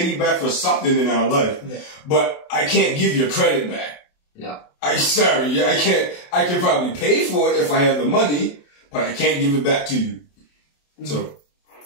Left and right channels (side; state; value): right; late; 28 ms